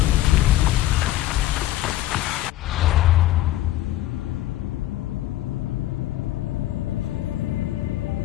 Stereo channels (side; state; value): right; quieter; 14.4 dB